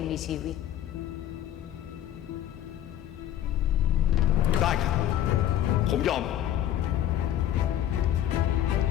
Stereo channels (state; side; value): quieter; right; 11.6 dB